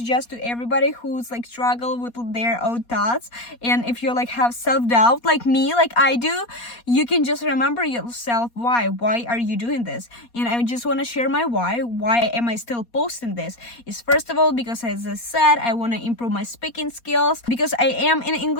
to everybody who's like struggle with their own thoughts, and if you like have self-doubt like me, like I do, you can just remember yourself why are you doing this. And I just want to share my why am I still posting this. Is first of all because, as I said, I want to improve my speaking skills, because I am in an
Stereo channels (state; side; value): late; right; 4.2 ms